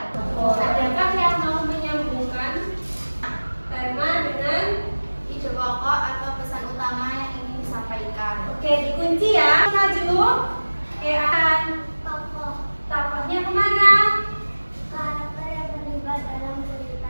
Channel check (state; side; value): inverted; both; correlation -1.00